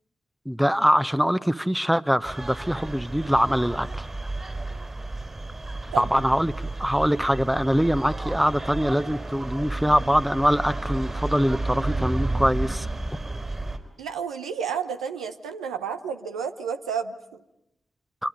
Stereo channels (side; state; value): both; normal; correlation 0.97